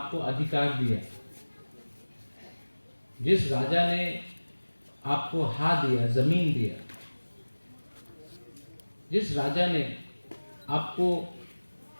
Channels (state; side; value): inverted; both; correlation -1.00